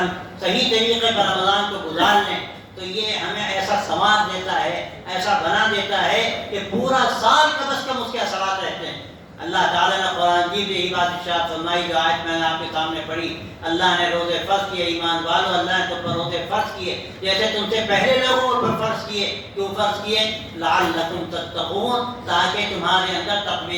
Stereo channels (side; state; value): both; identical; correlation 1.00